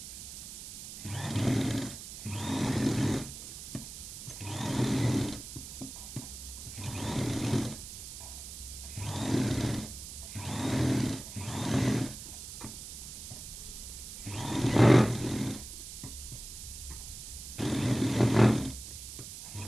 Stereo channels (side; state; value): right; noise; hiss, 11 dB below the sound